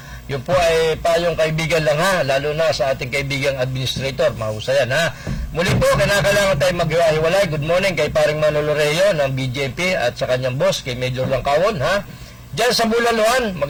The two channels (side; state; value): both; identical; correlation 1.00